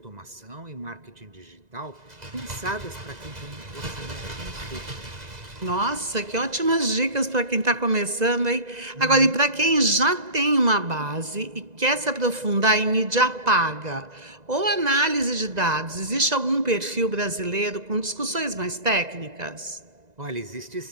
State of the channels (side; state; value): left; late; 2.0 ms